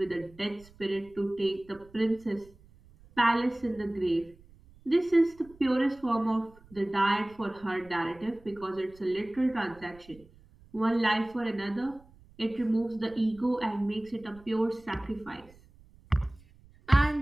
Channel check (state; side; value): noise; right; rumble, 25 dB below the sound